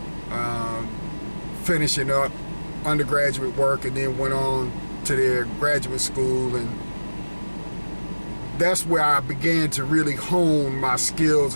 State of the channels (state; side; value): inverted; both; correlation -1.00